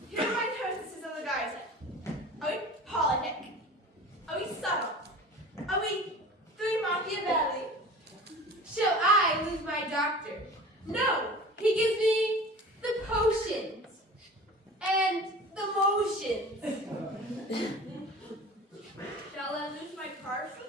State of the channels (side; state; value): both; normal; correlation 0.39